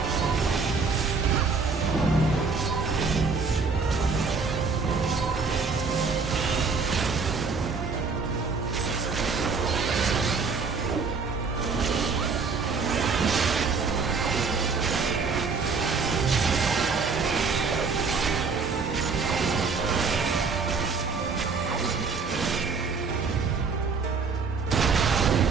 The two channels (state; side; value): quieter; left; 4.8 dB